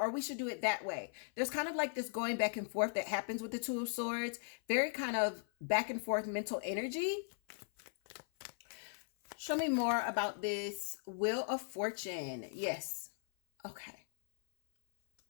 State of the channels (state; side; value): silent; right; 52 dB below the other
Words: we should do it that way. There's kind of like this going back and forth that happens with the Two of Swords. Very kind of back and forth mental energy. Show me more about this Wheel of Fortune. Yes. Okay.